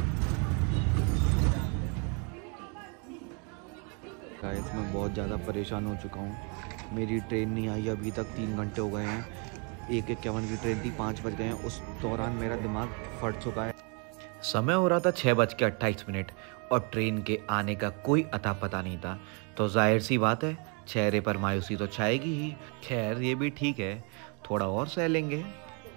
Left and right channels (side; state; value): left; quieter; 35.1 dB